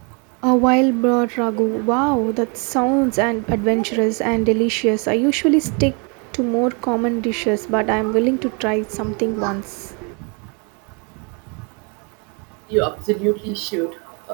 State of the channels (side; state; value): left; quieter; 33.8 dB